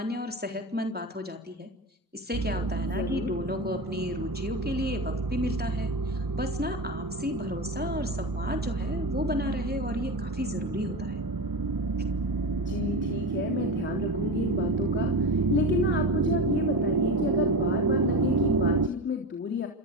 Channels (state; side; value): normal; both; correlation 0.23